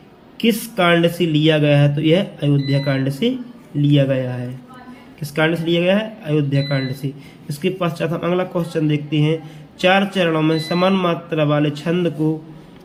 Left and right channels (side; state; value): both; identical; correlation 1.00